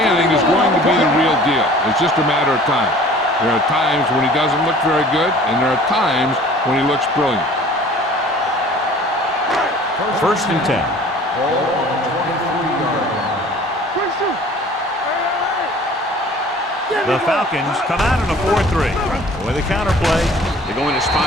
is going to be the real deal. It's just a matter of time. There are times when he doesn't look very good, and there are times when he looks brilliant. First and 10. Ball on the 23-yard line. Quick shoot. The Falcons come out in a 4-3. With a counter play, they're going to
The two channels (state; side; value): normal; both; correlation 0.49